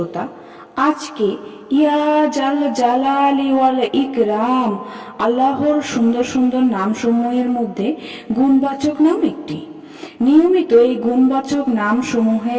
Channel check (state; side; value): identical; both; correlation 1.00